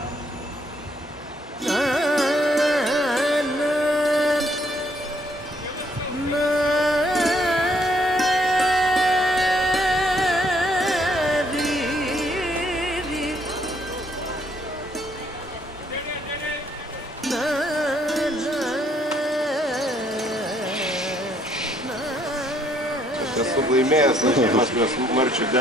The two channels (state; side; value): normal; both; correlation 0.68